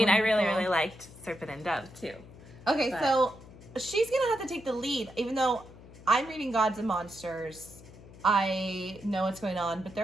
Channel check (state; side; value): noise; left; hum, 19 dB below the sound